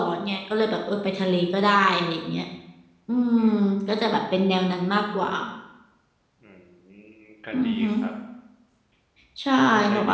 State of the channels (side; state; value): both; identical; correlation 1.00